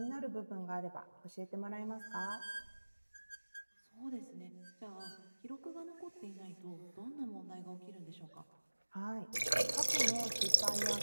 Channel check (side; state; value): both; inverted; correlation -1.00